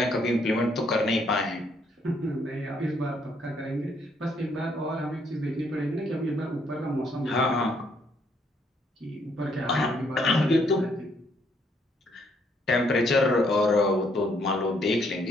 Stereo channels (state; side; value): normal; both; correlation 0.70